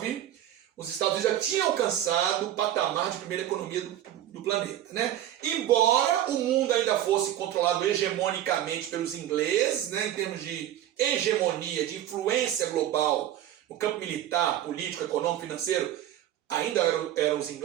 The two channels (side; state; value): left; quieter; 12.0 dB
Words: os Estados Unidos já tinham alcançado o patamar de primeira economia do planeta, né? Embora o mundo ainda fosse controlado hegemonicamente pelos ingleses, né, em termos de hegemonia, de influência global no campo militar, político, econômico, financeiro, ainda eram os